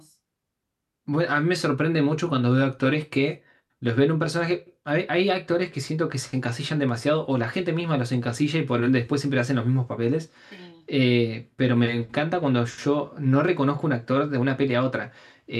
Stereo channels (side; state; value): both; identical; correlation 1.00